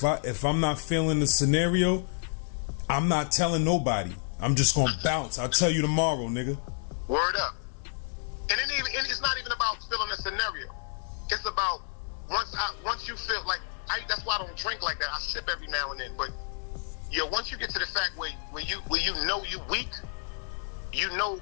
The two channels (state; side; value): silent; right; 58 dB below the other